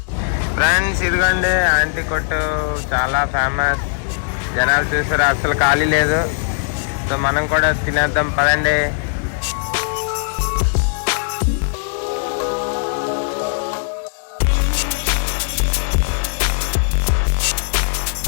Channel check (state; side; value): silent; right; digital silence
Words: ఫ్రెండ్స్ ఇదిగోండి ఆంటీ కొట్టు, చాలా ఫేమస్. జనాలు చూసారు, అసలు ఖాళీ లేదు. సో మనం కూడా తినేద్దాం పదండి.